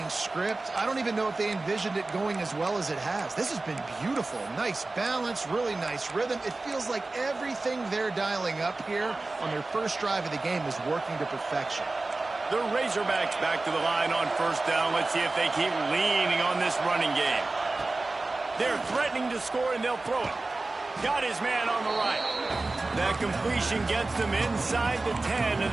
script, I don't even know if they envisioned it going as well as it has. This has been beautiful. Nice balance, really nice rhythm. It feels like everything they're dialing up here on their first drive of the game is working to perfection. The Razorbacks back to the line on first down. Let's see if they keep leaning on this running game. They're threatening to score, and they'll throw it. Got his man on the right. That completion gets them inside the 10, and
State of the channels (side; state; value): left; quieter; 3.2 dB